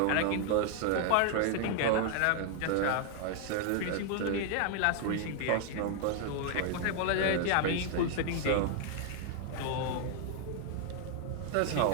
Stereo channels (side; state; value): both; different; correlation 0.00